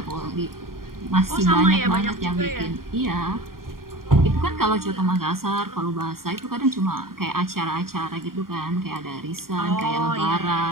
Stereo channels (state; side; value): late; left; 0.92 ms